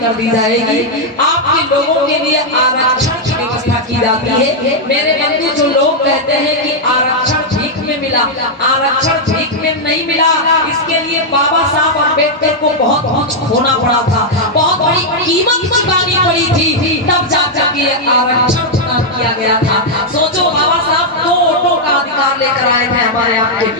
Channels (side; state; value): both; normal; correlation -0.03